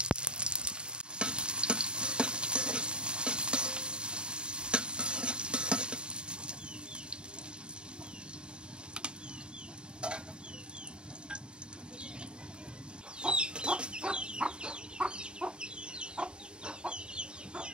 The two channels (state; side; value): late; left; 0.051 ms